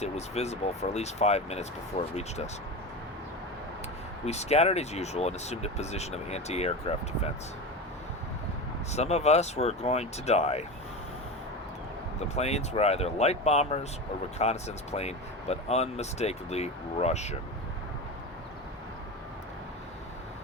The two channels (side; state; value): both; normal; correlation 0.24